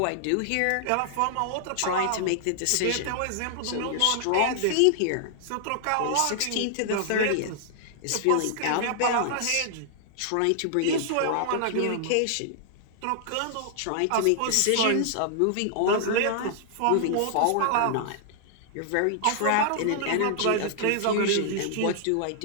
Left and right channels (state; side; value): different; both; correlation -0.01